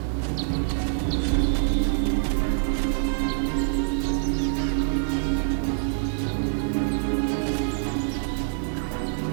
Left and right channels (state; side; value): silent; left; digital silence